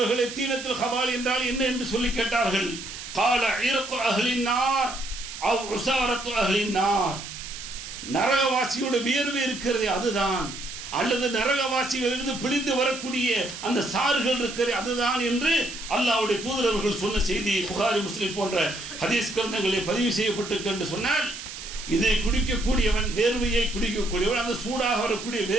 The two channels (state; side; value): noise; right; hiss, 10 dB below the sound